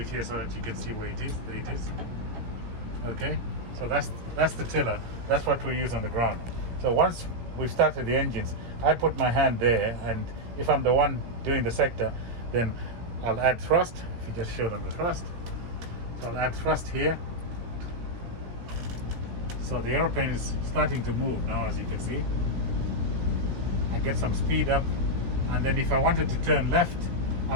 here so that you can see where it is. There it is. Okay, so that's the tiller. That's what we use on the ground. So once we've started the engines, I put my hand there, and if I'm the one doing the sector, then I'll add thrust. If you just show them the thrust. So I'll add thrust here. So the aeroplane is starting to move now, as you can see. I get some speed up, and then if I wanted to turn left,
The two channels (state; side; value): late; left; 17 ms